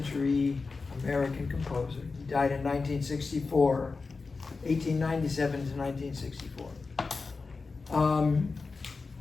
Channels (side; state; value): right; quieter; 4.2 dB